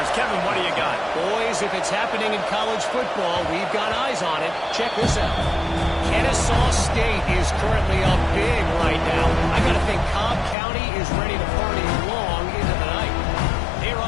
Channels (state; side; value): drops out; right; at 10.6 s